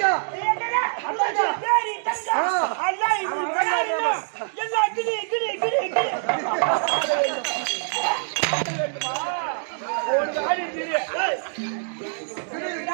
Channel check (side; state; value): left; silent; digital silence